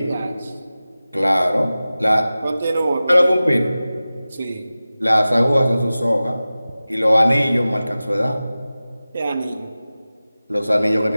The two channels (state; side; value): inverted; both; correlation -0.96